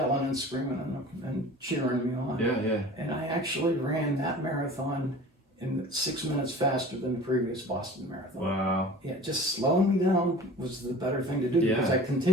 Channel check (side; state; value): both; normal; correlation 0.42